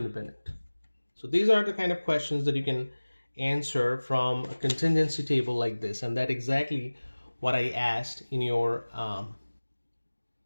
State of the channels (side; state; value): both; inverted; correlation -1.00